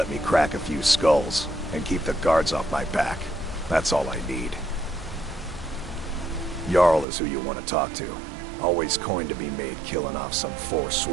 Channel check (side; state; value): left; drops out; at 7.1 s